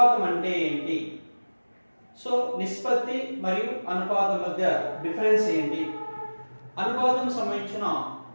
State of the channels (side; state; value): both; inverted; correlation -1.00